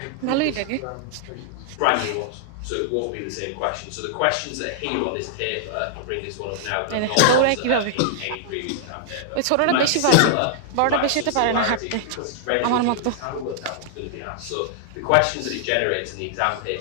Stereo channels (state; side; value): different; both; correlation -0.01